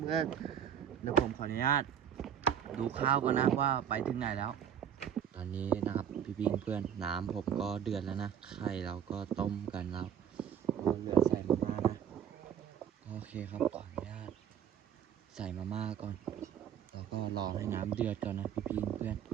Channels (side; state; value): left; quieter; 8.9 dB